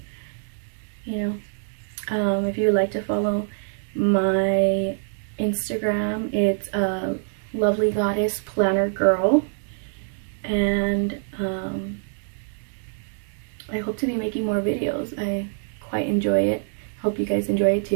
You know, if you would like to follow my Instagram, it's Lovely Goddess Planner Girl, and I hope to be making more videos. I quite enjoy it. Hope you guys enjoy it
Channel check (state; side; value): silent; left; digital silence